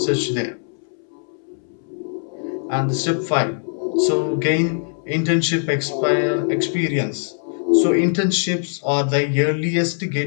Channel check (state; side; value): silent; right; 65 dB below the other